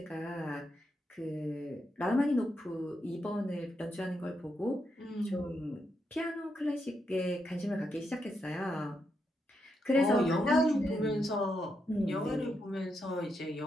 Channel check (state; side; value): normal; both; correlation 0.82